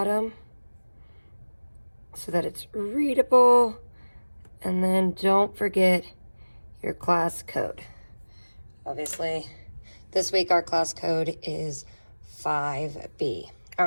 so that it's readable. And then don't forget your class code. Obviously, this week our class code is 5B. All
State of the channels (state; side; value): inverted; both; correlation -1.00